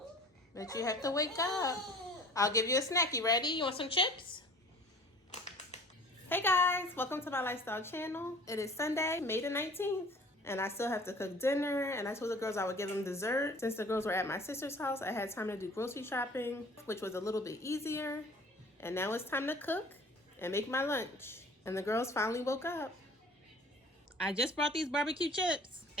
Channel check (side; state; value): both; normal; correlation 0.47